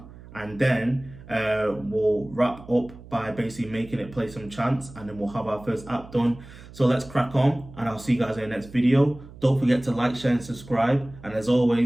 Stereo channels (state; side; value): noise; right; hum, 18 dB below the sound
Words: and then we'll wrap up by basically making it play some chants, and then we'll have our first app done. So let's crack on, and I'll see you guys in the next video. Don't forget to like, share, and subscribe. And as